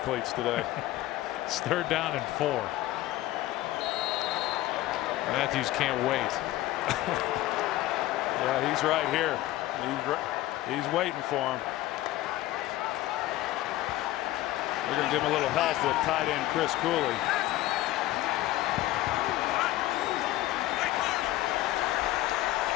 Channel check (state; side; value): quieter; right; 15.9 dB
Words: today. It's third down and 4. Matthews can't wait. Yeah, he's right here. He's waiting for him. We're going to give him a little help with tight end Chris Cooley.